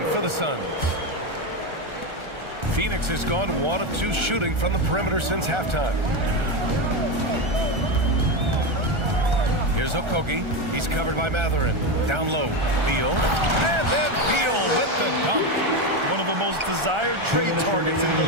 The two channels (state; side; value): late; left; 1.4 ms